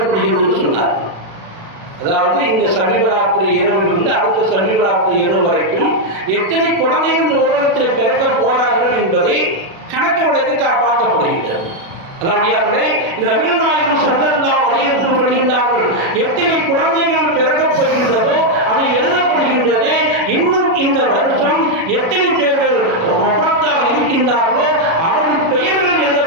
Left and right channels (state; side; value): late; left; 36 ms